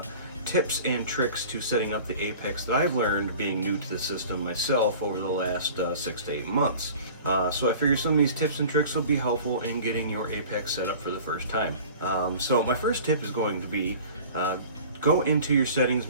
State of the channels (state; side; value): inverted; both; correlation -0.43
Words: tips and tricks to setting up the Apex that I've learned being new to the system myself over the last 6 to 8 months. So I figured some of these tips and tricks will be helpful in getting your Apex set up for the first time. So my first tip is going to be go into your settings